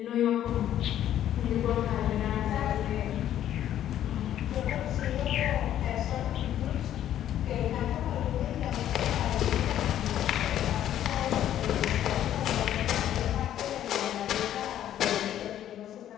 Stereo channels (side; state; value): right; quieter; 11.4 dB